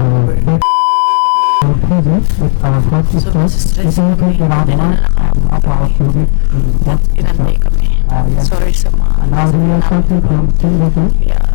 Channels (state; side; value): silent; right; digital silence